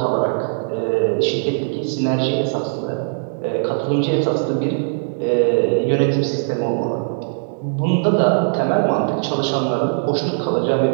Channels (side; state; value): left; silent; digital silence